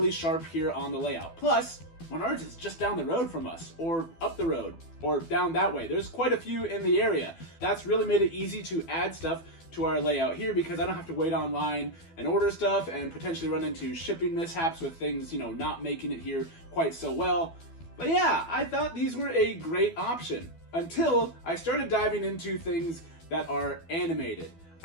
sharp here on the layout. Plus, Menards is just down the road from us, or up the road, or down that way. There's quite a few in the area. That's really made it easy to add stuff to our layout here because I don't have to wait online and order stuff and potentially run into shipping mishaps with things, not making it here quite so well. But yeah, I thought these were a great option until I started diving into things that are animated.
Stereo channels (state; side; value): late; right; 12 ms